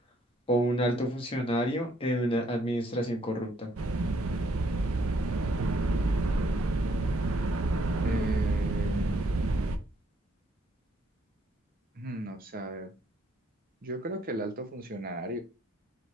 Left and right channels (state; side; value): normal; both; correlation 0.69